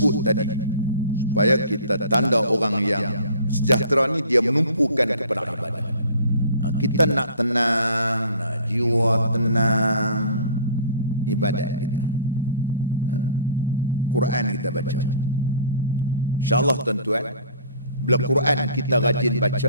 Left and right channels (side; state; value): both; inverted; correlation -0.48